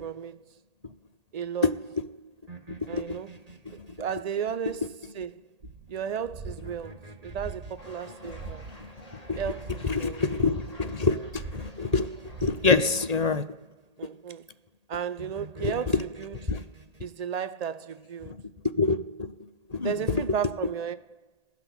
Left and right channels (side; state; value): left; late; 1.8 ms